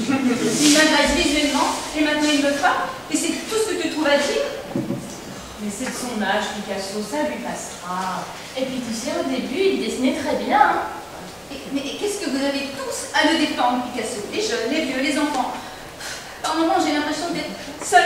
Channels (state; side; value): identical; both; correlation 1.00